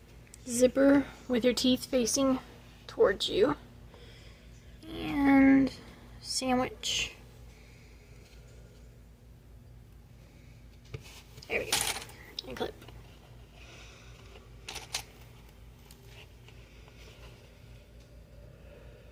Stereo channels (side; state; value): both; identical; correlation 1.00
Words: zipper with your teeth facing towards you. And sandwich. There we go. And clip.